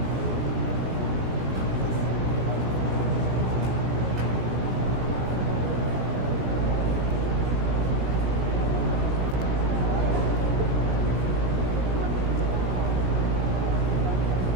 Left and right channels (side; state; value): left; late; 17 ms